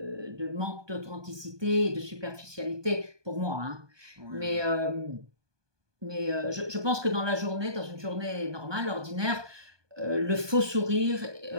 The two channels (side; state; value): left; late; 1.2 ms